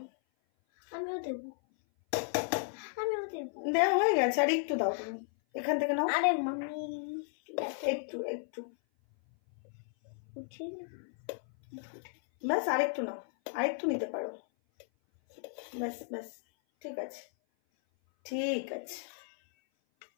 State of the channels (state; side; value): silent; right; 55 dB below the other